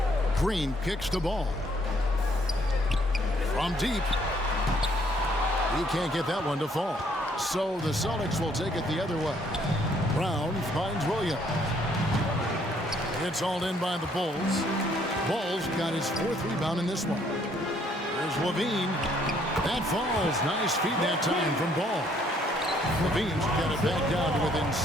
Green kicks the ball. From deep. He can't get that one to fall. So the Celtics will take it the other way. Brown finds Williams. It's all in by the Bulls. Bulls got his 4th rebound in this one. There's Levine. That falls. Nice feed that time from Ball. Levine's got it back down to within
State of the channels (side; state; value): both; normal; correlation 0.66